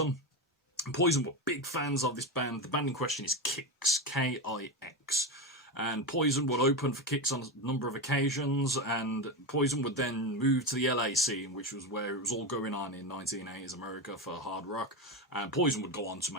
Poison were big fans of this band. The band in question is Kix, K-I-X. And Poison would open for Kix on a number of occasions, and Poison would then move to the LA scene, which was where it was all going on in 1980s America for hard rock, and Poison would go on to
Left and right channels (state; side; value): normal; both; correlation 0.16